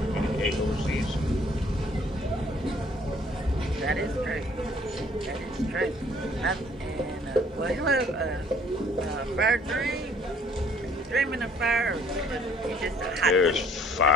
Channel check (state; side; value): normal; both; correlation 0.59